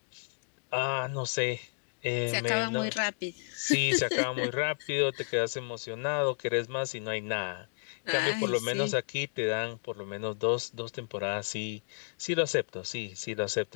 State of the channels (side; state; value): right; silent; digital silence